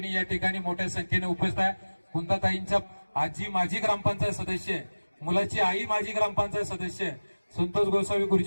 या ठिकाणी मोठ्या संख्येने उपस्थित आहे. कुंताताईंच्या आजी माजी ग्रामपंचायत सदस्य आहे, मुलाची आई माजी ग्रामपंचायत सदस्य आहे. संतोष गोसावी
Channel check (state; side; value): inverted; both; correlation -1.00